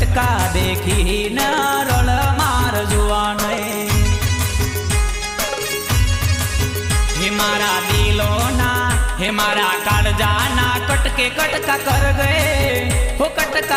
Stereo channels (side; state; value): both; identical; correlation 1.00